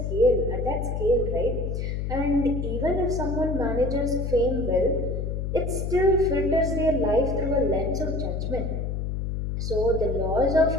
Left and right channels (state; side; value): noise; left; hum, 2 dB below the sound